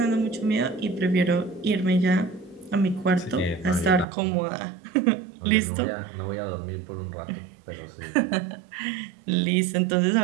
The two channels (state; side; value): drops out; left; at 4.0 s